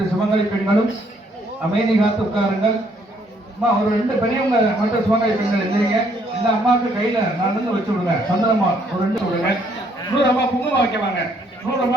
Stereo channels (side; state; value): both; normal; correlation 0.68